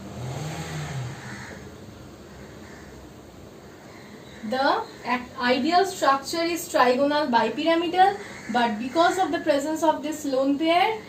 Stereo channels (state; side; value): identical; both; correlation 1.00